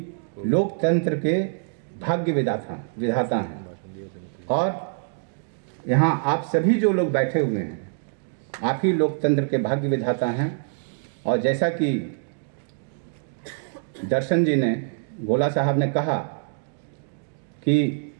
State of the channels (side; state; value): left; silent; digital silence